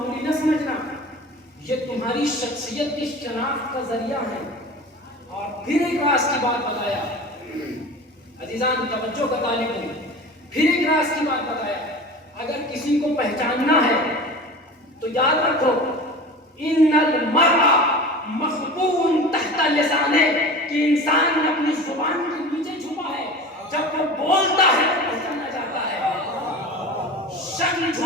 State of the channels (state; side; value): normal; both; correlation 0.35